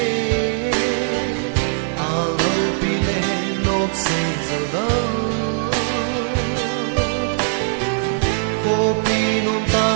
kopi non ta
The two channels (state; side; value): silent; left; digital silence